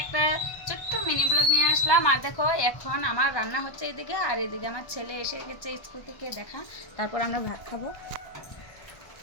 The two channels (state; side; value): late; right; 1.2 ms